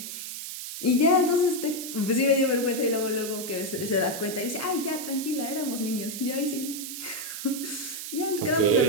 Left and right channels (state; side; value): noise; right; hiss, 7 dB below the sound